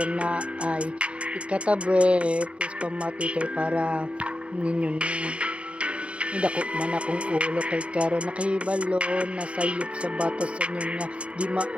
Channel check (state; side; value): late; left; 0.060 ms